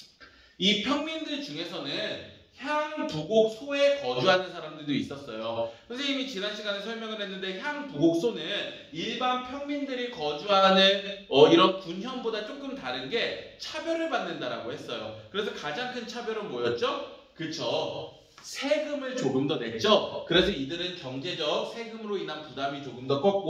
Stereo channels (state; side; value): identical; both; correlation 1.00